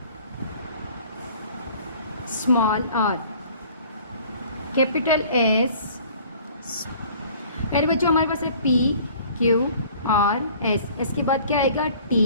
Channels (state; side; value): inverted; both; correlation -0.51